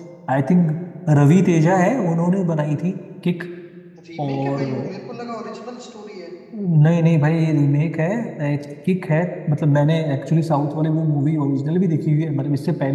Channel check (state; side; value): identical; both; correlation 1.00